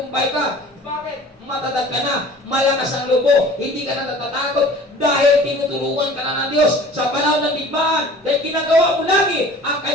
ka. Bakit? Matatag ka na, malakas ang lobo, hindi ka na natatakot dahil tinutulungan ka na ng Diyos sa panahon ng digmaan. Dahil ginagawa mo lagi ang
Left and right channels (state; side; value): normal; both; correlation 0.45